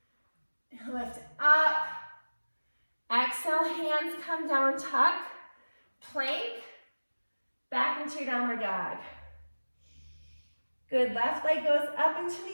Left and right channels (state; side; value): inverted; both; correlation -1.00